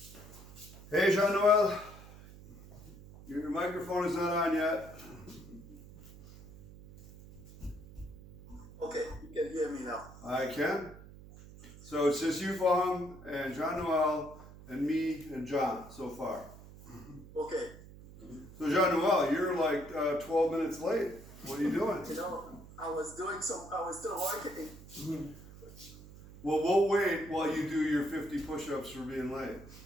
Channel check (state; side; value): noise; right; hum, 18 dB below the sound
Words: Hey, Jean-Noel. Your microphone is not on yet. Okay, you can hear me now. I can. So it's just you, Fong, and Jean-Noel, and me, and John so far. Okay. So Jean-Noel, you're like 12 minutes late. What are you doing? You know, I was still working. Well, we'll wait while you do your 50 push-ups for being late.